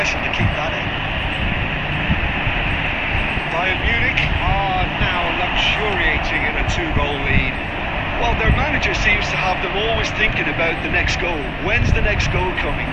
to keep that in. Bayern Munich are now luxuriating in a 2-goal lead. Well, their manager seems to have them always thinking about the next goal. When's the next goal coming?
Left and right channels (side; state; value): both; identical; correlation 1.00